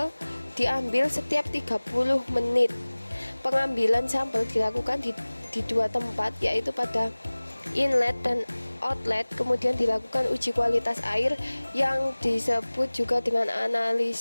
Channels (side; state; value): both; inverted; correlation -1.00